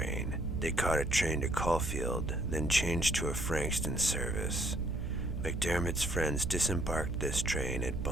They caught a train to Caulfield, then changed to a Frankston service. MacDiarmid's friends disembarked this train at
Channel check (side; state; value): right; noise; hum, 3 dB below the sound